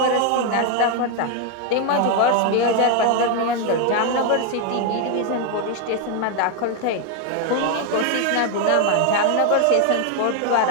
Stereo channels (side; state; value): both; different; correlation 0.01